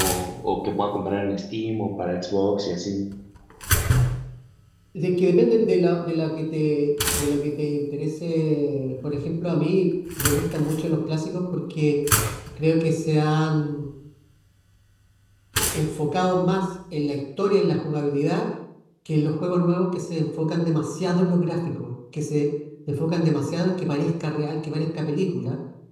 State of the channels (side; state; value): both; identical; correlation 1.00